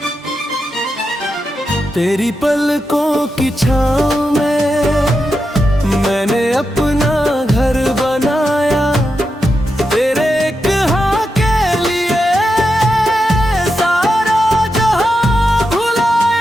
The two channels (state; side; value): normal; both; correlation 0.87